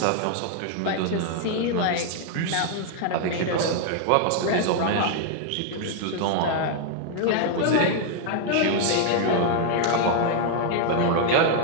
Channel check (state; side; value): different; both; correlation 0.00